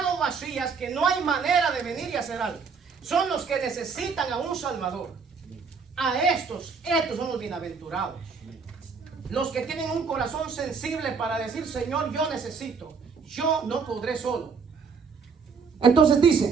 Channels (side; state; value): left; quieter; 5.5 dB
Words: vacías, que no hay manera de venir y hacer algo. Son los que necesitan a un Salvador. A estos son los bienaventurados. Los que tienen un corazón sensible para decir, Señor, yo necesito. Yo no podré solo. Entonces